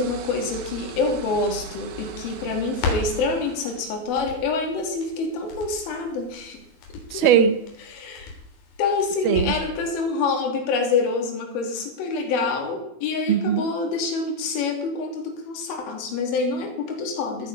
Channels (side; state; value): right; late; 12 ms